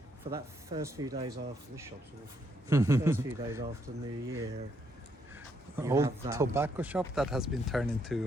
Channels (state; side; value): normal; both; correlation 0.74